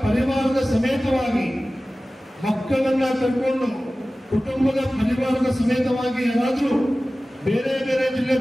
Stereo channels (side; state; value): both; normal; correlation 0.97